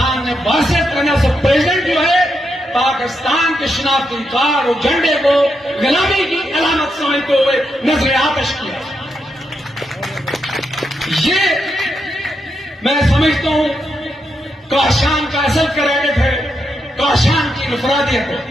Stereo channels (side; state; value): both; normal; correlation 0.83